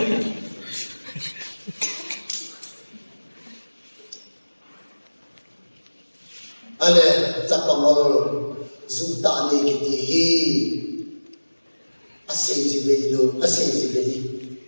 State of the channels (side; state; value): both; inverted; correlation -1.00